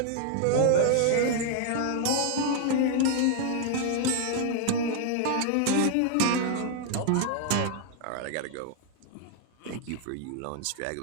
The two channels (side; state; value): both; different; correlation 0.00